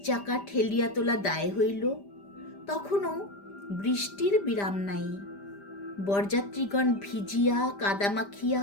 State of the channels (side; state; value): right; late; 5.0 ms